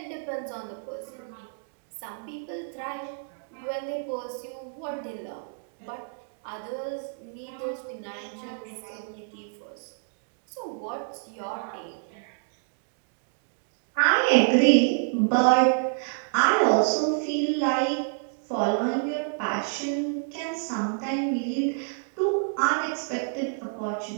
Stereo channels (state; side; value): silent; left; digital silence